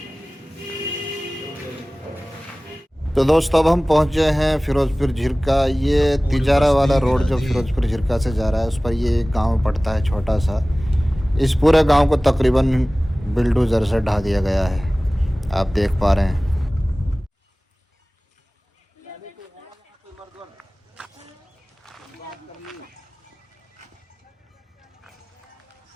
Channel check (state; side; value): normal; both; correlation 0.98